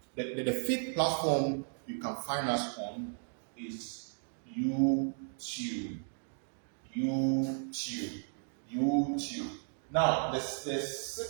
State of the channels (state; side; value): silent; left; 55 dB below the other